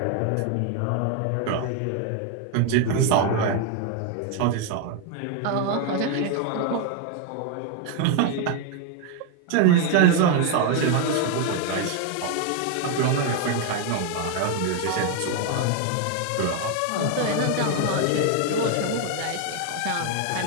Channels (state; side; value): different; both; correlation 0.01